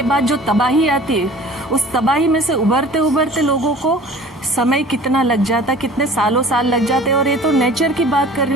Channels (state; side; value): normal; both; correlation 0.45